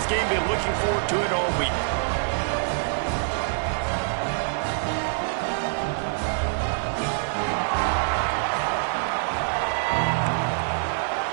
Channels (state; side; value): silent; left; digital silence